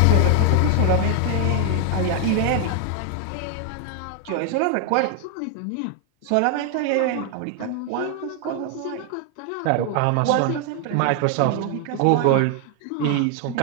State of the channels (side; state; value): both; different; correlation 0.00